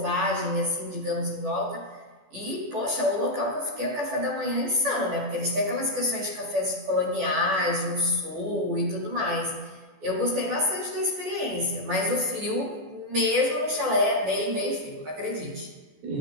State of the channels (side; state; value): left; late; 14 ms